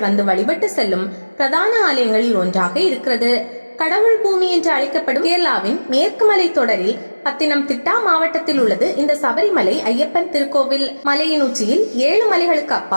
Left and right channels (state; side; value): inverted; both; correlation -1.00